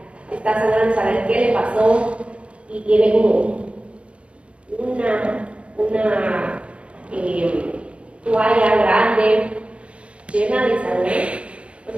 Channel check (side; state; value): left; late; 0.060 ms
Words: está sangrando, saber qué le pasó y tiene como una toalla grande llena de sangre, pues